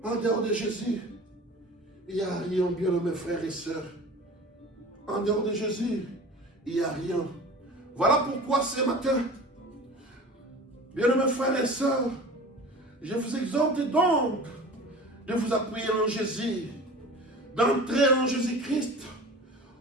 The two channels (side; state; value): both; normal; correlation 0.39